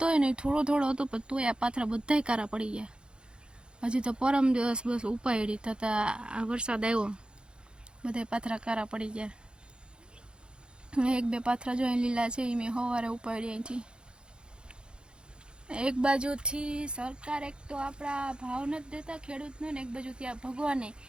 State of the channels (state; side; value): late; left; 0.051 ms